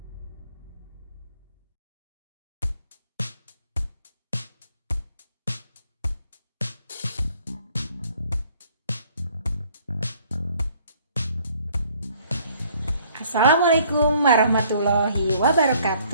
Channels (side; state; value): both; inverted; correlation -0.60